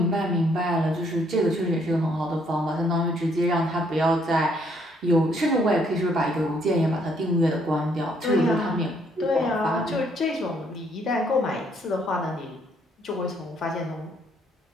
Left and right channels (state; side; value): normal; both; correlation 0.68